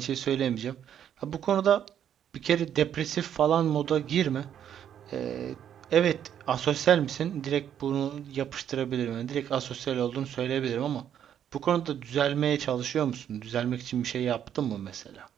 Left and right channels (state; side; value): quieter; left; 9.6 dB